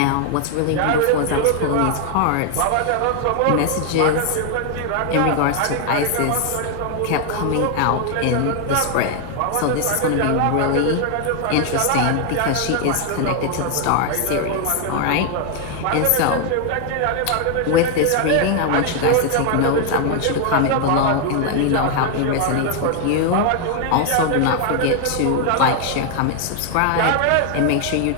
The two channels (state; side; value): different; both; correlation 0.00